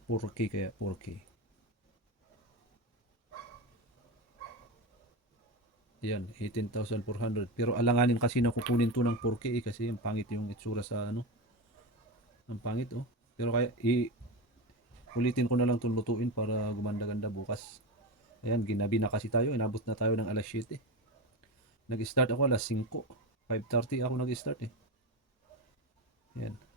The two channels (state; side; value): normal; both; correlation 0.19